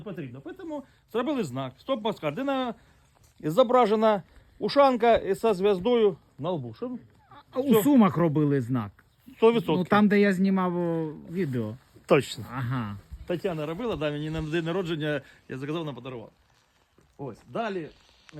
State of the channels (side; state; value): both; identical; correlation 1.00